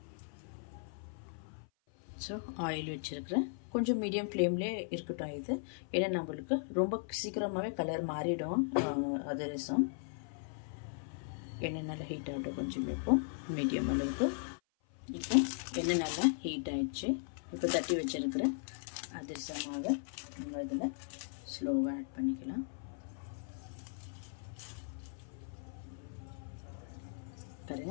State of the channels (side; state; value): right; silent; 53 dB below the other